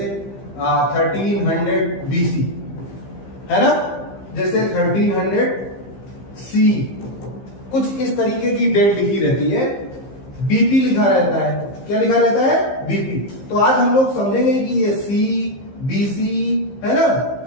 1300 BC है ना, जैसे 1300 C, कुछ इस तरीके की डेट लिखी रहती है। बीपी लिखा रहता है, क्या लिखा रहता है? बीपी। तो आज हम लोग समझेंगे कि ये सी, बीसी है ना,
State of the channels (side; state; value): right; late; 15 ms